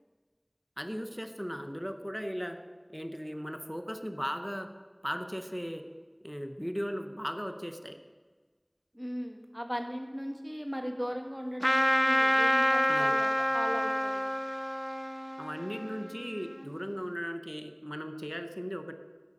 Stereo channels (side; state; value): both; identical; correlation 1.00